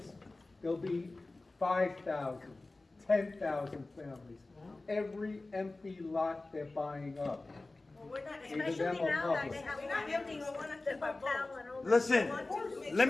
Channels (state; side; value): quieter; right; 3.1 dB